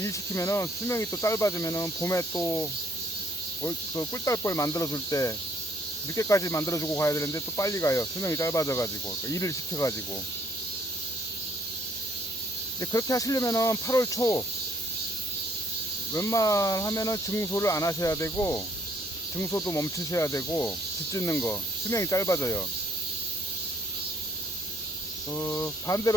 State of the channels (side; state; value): both; normal; correlation 0.64